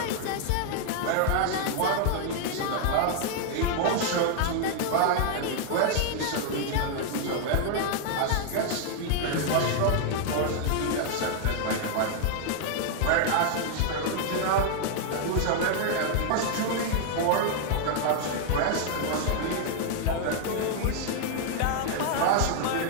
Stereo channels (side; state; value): both; different; correlation 0.00